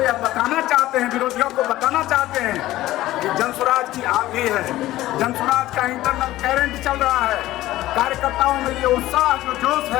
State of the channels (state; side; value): quieter; right; 15.8 dB